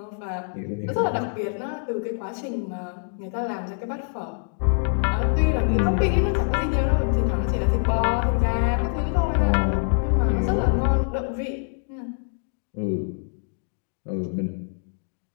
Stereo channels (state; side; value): silent; right; digital silence